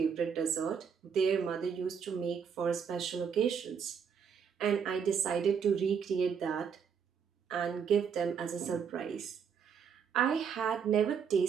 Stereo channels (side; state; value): left; quieter; 6.9 dB